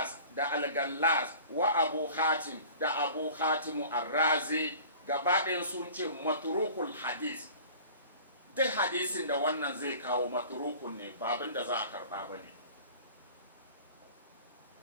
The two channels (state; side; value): inverted; both; correlation -0.44